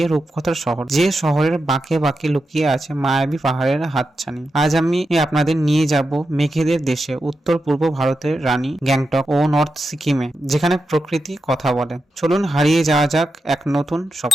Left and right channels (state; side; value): normal; both; correlation 0.88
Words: রূপকথার শহর, যে শহরের বাঁকে বাঁকে লুকিয়ে আছে মায়াবী পাহাড়ের হাতছানি। আজ আমি আপনাদের নিয়ে যাব মেঘেদের দেশে, উত্তর পূর্ব ভারতের রানী গ্যাংটক ও নর্থ সিকিমে, যেখানে প্রকৃতি কথা বলে। চলুন হারিয়ে যাওয়া যাক এক নতুন